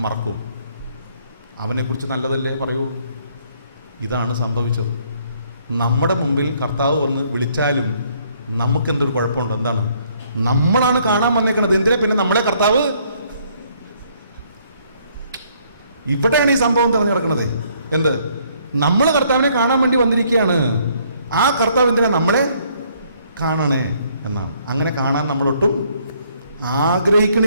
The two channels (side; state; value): both; inverted; correlation -0.66